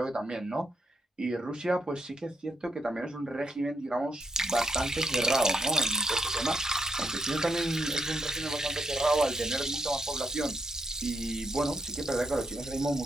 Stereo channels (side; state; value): both; normal; correlation 0.79